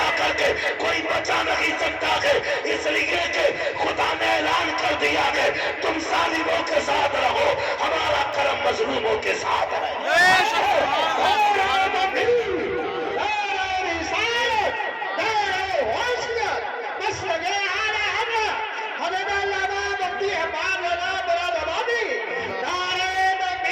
کر کے کوئی بچا نہیں سکتا ہے، اس لیے کہ خدا نے اعلان کر دیا کہ تم ظالموں کے ساتھ رہو، ہمارا کرم مظلوموں کے ساتھ رہے۔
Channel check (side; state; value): both; identical; correlation 1.00